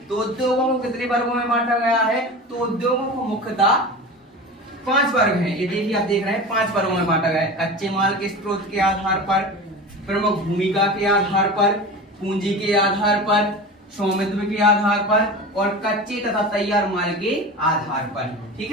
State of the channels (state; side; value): normal; both; correlation 0.31